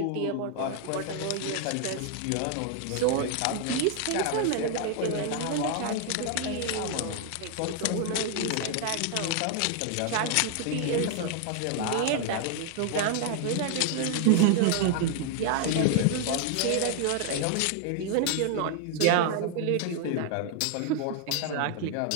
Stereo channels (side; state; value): both; different; correlation 0.00